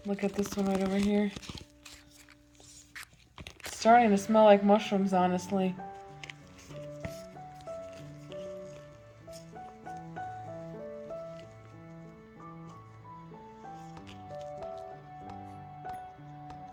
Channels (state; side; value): identical; both; correlation 1.00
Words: Look at this one right over here. It's starting to smell like mushrooms, honestly.